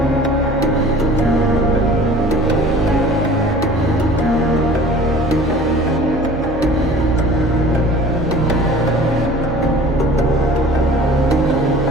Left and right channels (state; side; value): normal; both; correlation 0.46